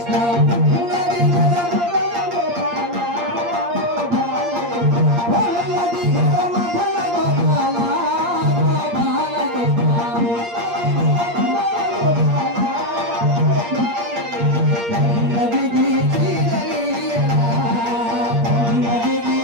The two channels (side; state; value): left; late; 8.6 ms